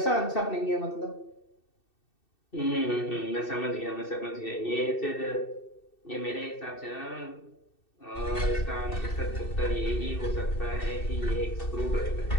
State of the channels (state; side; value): late; right; 2.6 ms